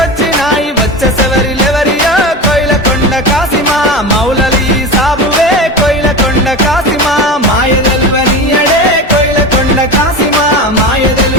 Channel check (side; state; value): both; normal; correlation 0.27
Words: వచ్చే సెవరిలెవరియో కోయిలకొండ కాసిమా, మౌలలి సాబువే కోయిలకొండ కాసిమా. మాయ తెలువనీయడే కోయిలకొండ కాసిమా, మాయ